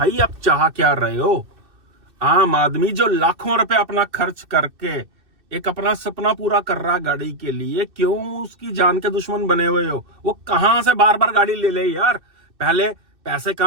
आप चाह क्या रहे हो, आम आदमी जो लाखों रुपए अपना खर्च करके एक अपना सपना पूरा कर रहा गाड़ी के लिए, क्यों उसकी जान के दुश्मन बने हुए हो। वो कहां से बार बार गाड़ी ले ले यार, पहले पैसे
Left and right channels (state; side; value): late; left; 2.6 ms